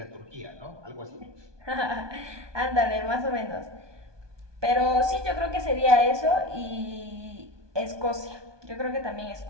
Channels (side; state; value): left; late; 1.2 ms